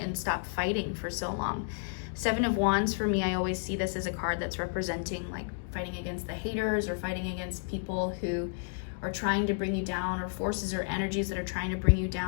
stop fighting for so long. Seven of Wands, for me, I always see this as a card that's representing like fighting against the haters or fighting against people who are trying to bring you down, or forces or energies that are trying to bring you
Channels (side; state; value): right; silent; digital silence